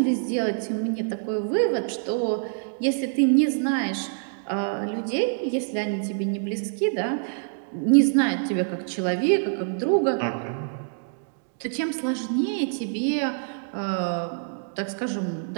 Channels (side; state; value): left; silent; digital silence